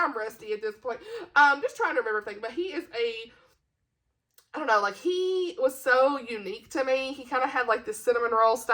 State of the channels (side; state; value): both; identical; correlation 1.00